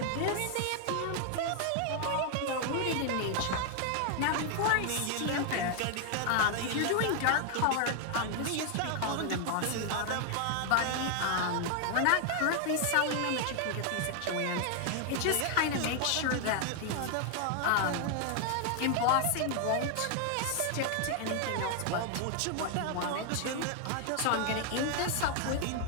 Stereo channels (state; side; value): different; both; correlation 0.00